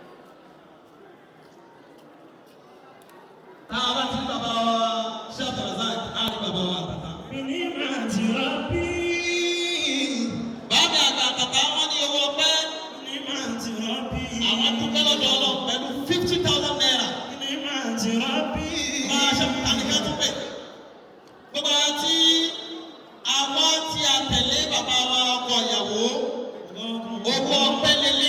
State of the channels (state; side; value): identical; both; correlation 1.00